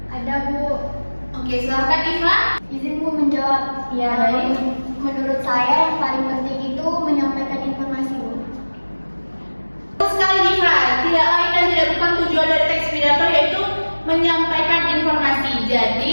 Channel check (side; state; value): both; inverted; correlation -1.00